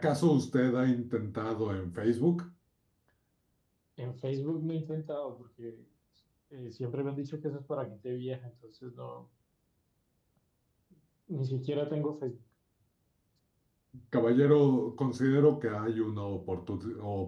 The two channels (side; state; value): both; identical; correlation 1.00